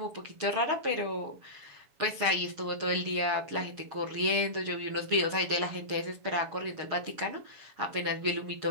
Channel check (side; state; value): left; late; 7.1 ms